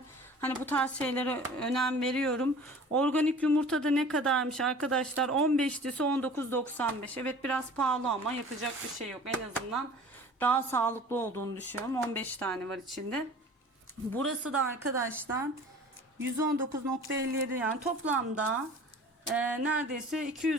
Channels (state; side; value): normal; both; correlation 0.44